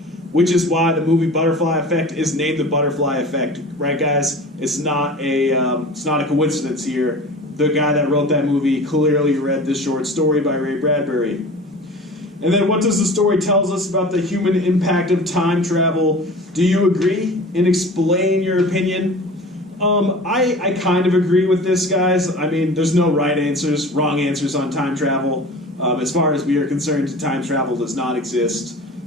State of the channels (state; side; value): normal; both; correlation 0.39